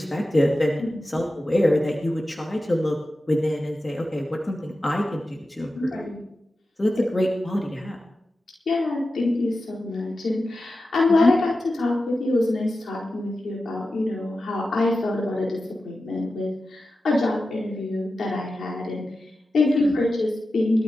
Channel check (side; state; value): both; normal; correlation 0.93